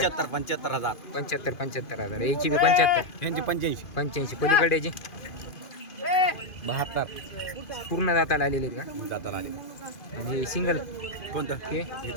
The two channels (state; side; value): late; right; 2.5 ms